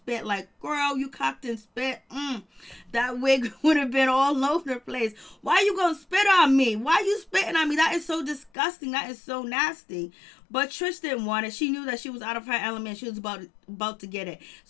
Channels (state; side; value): drops out; right; at 8.5 s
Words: Like, girl, you cocked and spit. That wig would have been all over the place. Why you gonna spit on me? Why you spitting on me? That is so disgusting. That is so nasty. But Trish didn't want it. She knew that she was out of her element. She was about to get it.